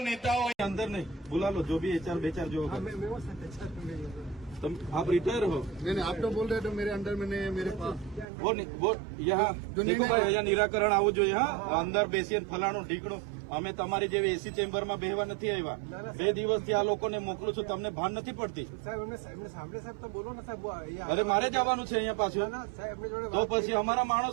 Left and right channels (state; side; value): drops out; left; at 8.2 s